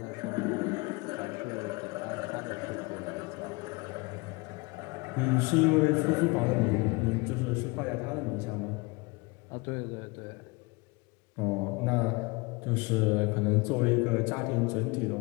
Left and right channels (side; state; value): right; quieter; 26.4 dB